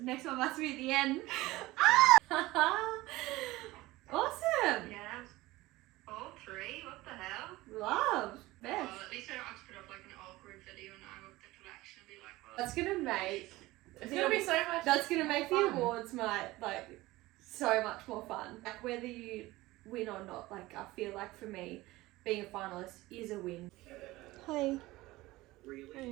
next one must be at the end. That's gonna make It's gonna be so much. that's gonna make the fun. awards night like so much more fun. Like whether you win or not, like I feel like for me, being a finalist is a win. Hi.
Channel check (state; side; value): quieter; left; 19.0 dB